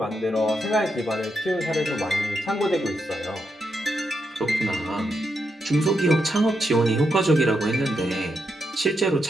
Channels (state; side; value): normal; both; correlation 0.82